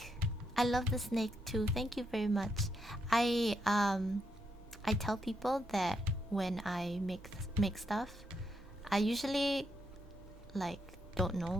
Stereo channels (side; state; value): both; normal; correlation 0.80